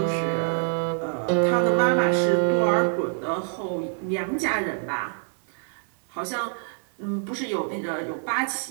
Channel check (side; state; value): left; silent; digital silence